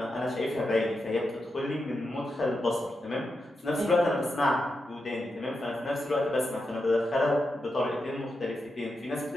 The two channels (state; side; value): normal; both; correlation 0.87